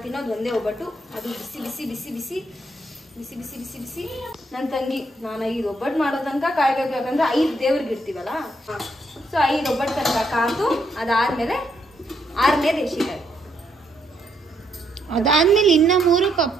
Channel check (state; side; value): normal; both; correlation 0.75